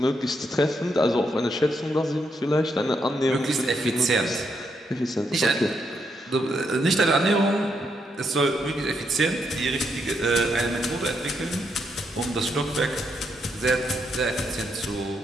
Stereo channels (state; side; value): normal; both; correlation 0.78